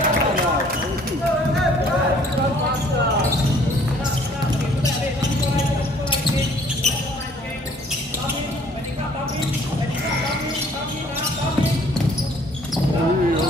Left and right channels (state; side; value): normal; both; correlation 0.58